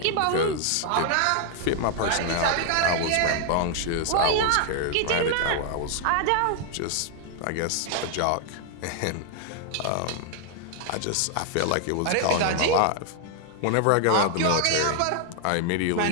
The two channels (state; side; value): different; both; correlation 0.00